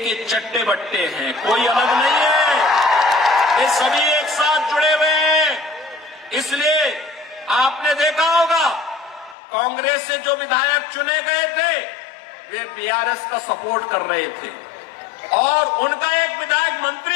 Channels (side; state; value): right; drops out; at 9.3 s